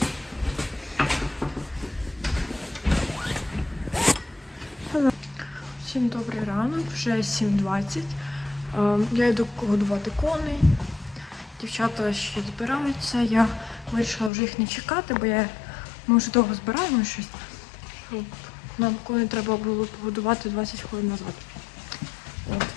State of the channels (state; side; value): drops out; right; at 14.3 s